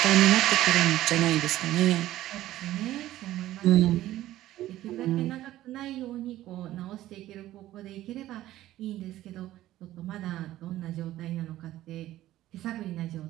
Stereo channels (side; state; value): left; quieter; 14.6 dB